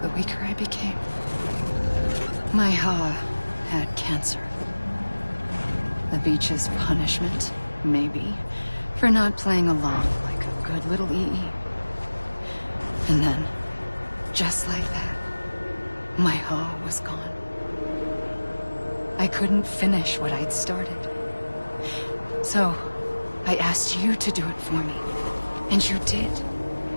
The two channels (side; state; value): both; inverted; correlation -1.00